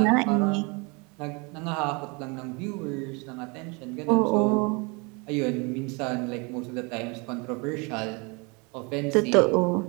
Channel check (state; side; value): quieter; left; 29.9 dB